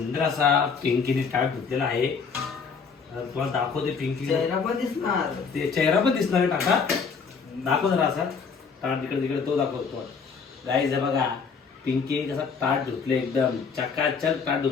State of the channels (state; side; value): quieter; right; 5.6 dB